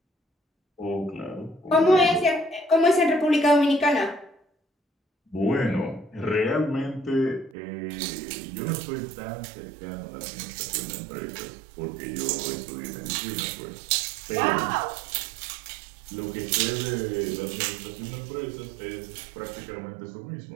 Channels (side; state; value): left; drops out; at 7.6 s